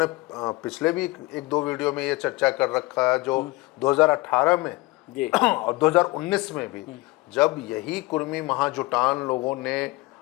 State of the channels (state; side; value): quieter; right; 21.5 dB